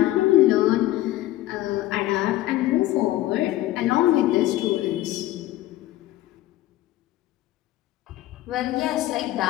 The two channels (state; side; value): quieter; right; 15.7 dB